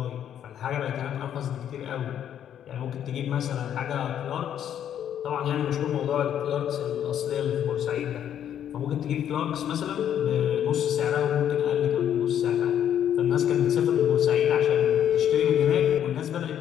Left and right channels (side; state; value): right; quieter; 9.9 dB